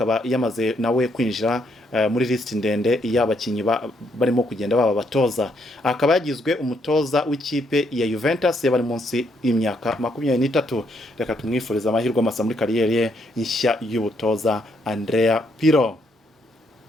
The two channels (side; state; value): both; normal; correlation 0.74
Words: yamaze nawe kwinjira muri list ndende y'abakinyi barimo kugenda baba batoza. Akaba yagizwe umutoza w'ikipe ya Juventus y'abari munsi y'imyaka 23. Reka tumwifuriza amahirwe masa muri kariyeri ye nshya y'ubutoza Andrea Pirlo.